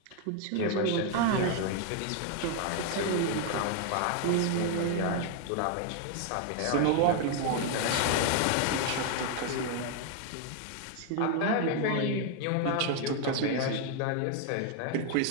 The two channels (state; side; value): different; both; correlation 0.00